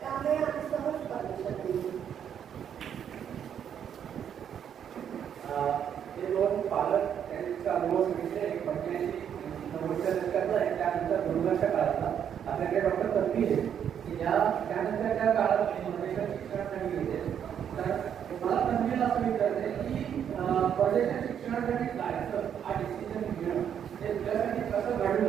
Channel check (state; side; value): quieter; left; 8.7 dB